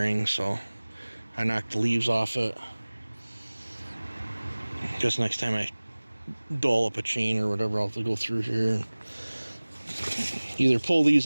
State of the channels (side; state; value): both; inverted; correlation -1.00